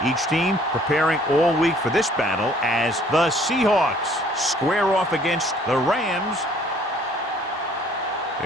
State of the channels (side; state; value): both; normal; correlation 0.58